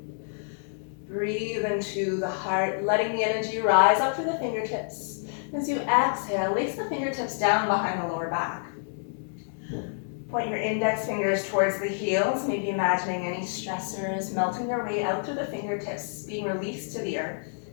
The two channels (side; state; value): right; silent; digital silence